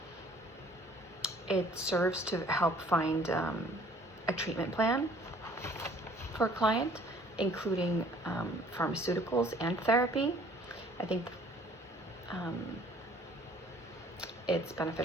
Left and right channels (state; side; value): normal; both; correlation 0.55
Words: it serves to help find a treatment plan for a client, including pharmaceuticals and therapy. I think it's